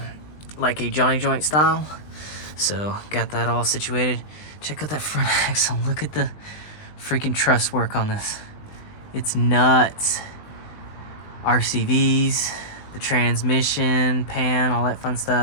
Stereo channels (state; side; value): late; right; 20 ms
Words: like a Johnny joint style. So got that all situated. Check out that front axle. Look at the freaking truss work on this. It's nuts. RCVs, the transmission, pan, all that fun